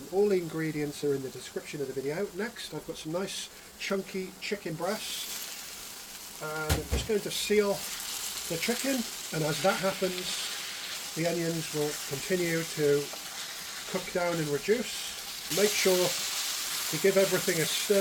All the ingredients are in the description of the video. Next, I've got some nice chunky chicken breast, and I'm just going to seal the chicken, and as that happens, the onions will continue to cook down and reduce. Make sure to give everything a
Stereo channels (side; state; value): both; identical; correlation 1.00